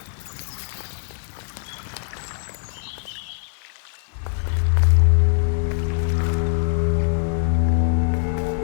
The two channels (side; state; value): right; silent; digital silence